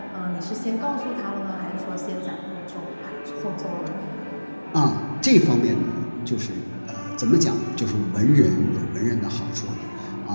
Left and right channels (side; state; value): both; inverted; correlation -1.00